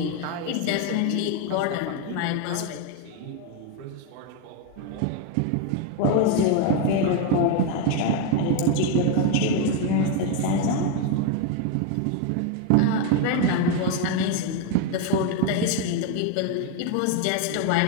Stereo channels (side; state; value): both; different; correlation 0.02